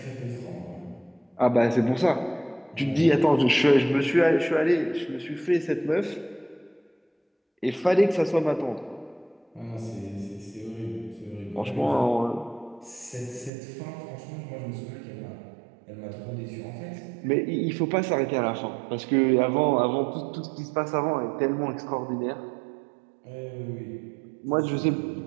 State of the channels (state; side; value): drops out; left; at 13.5 s